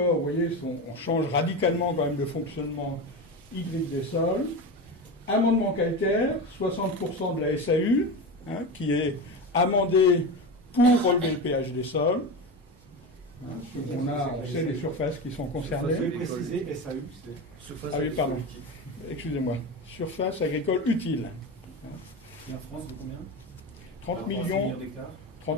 vous voyez, on change radicalement quand même le fonctionnement hydrique des sols. Amendement calcaire, 60% de la SAU, qui est amendé pour relever le pH des sols. On sait les surfaces qui sont concernées. Vous pouvez préciser SAU, c'est surface. Ah oui, pardon. Excusez-moi. Surface agricole utile. Et en France, de combien 30 millions d'hectares.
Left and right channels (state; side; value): normal; both; correlation 0.22